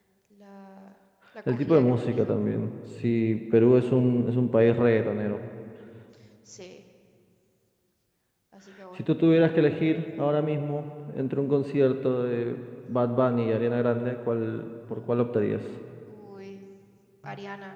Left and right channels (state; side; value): identical; both; correlation 1.00